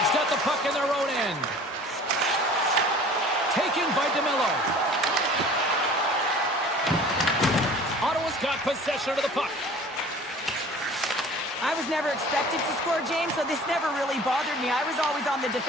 got the puck in their own end. Taken by DeMello. Ottawa's got possession of the puck. I was never expected to score, James, so this never really bothered me. I was always on the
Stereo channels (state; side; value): normal; both; correlation 0.46